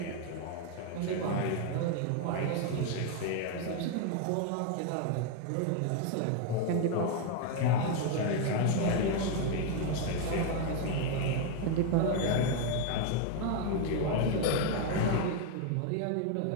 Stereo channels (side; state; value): both; different; correlation 0.01